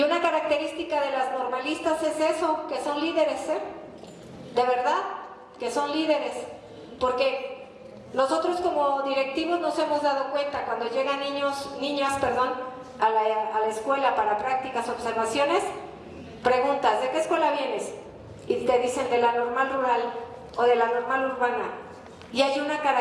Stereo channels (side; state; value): both; identical; correlation 1.00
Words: una característica de las normalistas es eso, que son líderes, de verdad, que son líderes, porque nosotros como directivos nos hemos dado cuenta cuando llegan niñas, a la escuela para prácticas, observaciones, preguntas, ¿de qué escuela vienes? Y te dicen de la normal rural o de la normal urbana. Y hay una